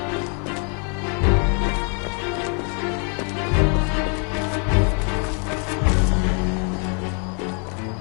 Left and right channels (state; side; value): quieter; right; 39.7 dB